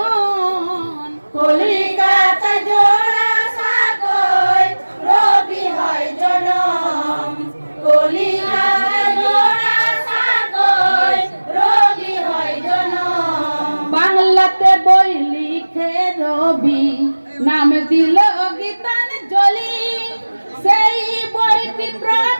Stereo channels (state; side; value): inverted; both; correlation -1.00